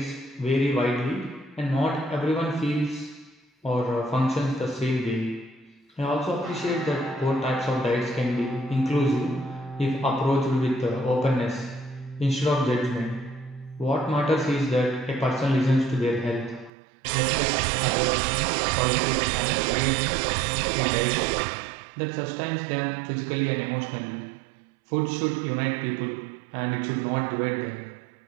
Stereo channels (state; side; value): drops out; left; at 16.7 s